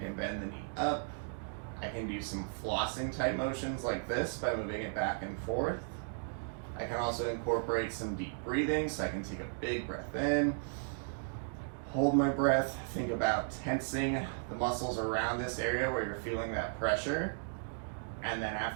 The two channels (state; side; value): silent; left; digital silence